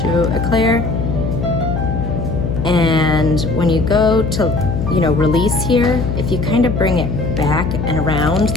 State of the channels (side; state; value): left; noise; hum, 3 dB below the sound